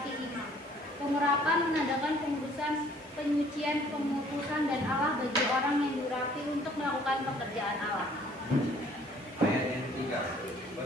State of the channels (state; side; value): normal; both; correlation 0.58